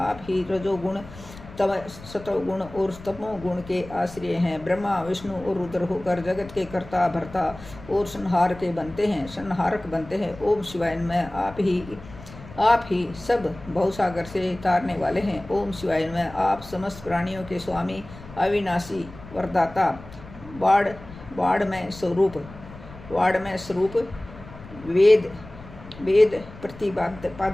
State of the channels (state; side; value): noise; left; rumble, 17 dB below the sound